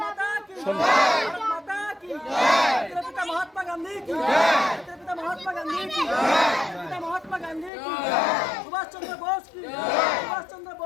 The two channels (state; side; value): drops out; right; at 7.7 s